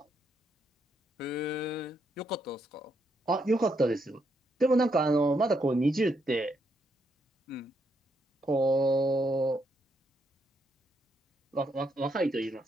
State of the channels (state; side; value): normal; both; correlation 0.77